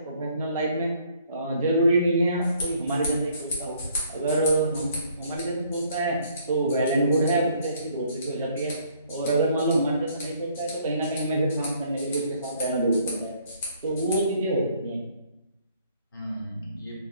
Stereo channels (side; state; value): both; inverted; correlation -0.63